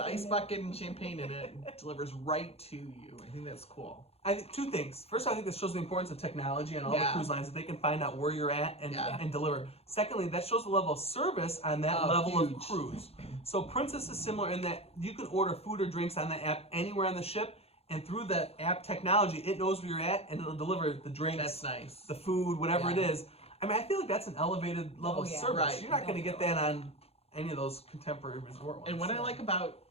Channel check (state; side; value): late; right; 0.29 ms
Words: ice bucket and champagne in it, and delivers right to you. I think that's cool. I think two things. First, I think this shows the importance of technology on all the Yeah. cruise lines that they can find out where you're at Yeah. and deliver. Secondly, that shows the level of service on that Oh, level of huge. cruise. So Princess is similar in that you can order food or drinks on the app anywhere on the ship, and through that app technology, it knows where you're at and it'll deliver the drinks, That's nice. the food, whatever Yeah. it is. I mean, I feel like that's an elevated level Oh, of yeah. service. Right. You're not going to get that on any of those contemporary resort ones. And what I like about